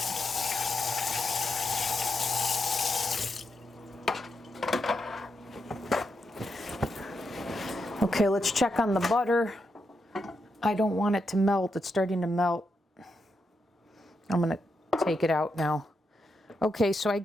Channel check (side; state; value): both; normal; correlation 0.84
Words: Okay, let's check on the butter. I don't want it to melt. It's starting to melt. I'm going to take it out now. Okay, so I